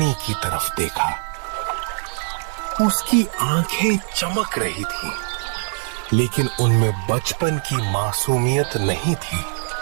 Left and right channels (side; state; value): left; silent; 60 dB below the other